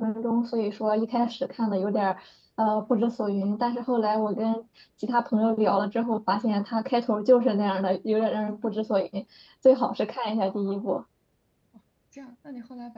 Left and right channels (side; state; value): both; identical; correlation 1.00